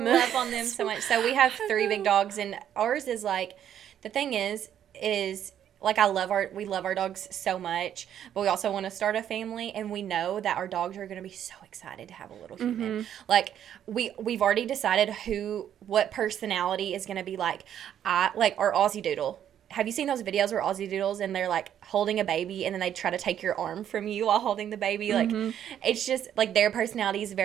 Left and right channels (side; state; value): left; quieter; 10.0 dB